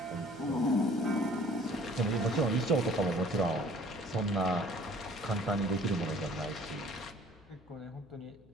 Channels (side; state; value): left; noise; hum, 27 dB below the sound